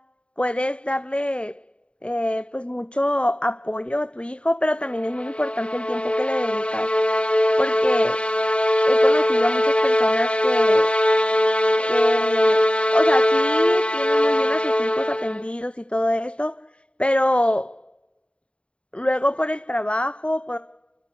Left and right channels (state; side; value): late; right; 0.057 ms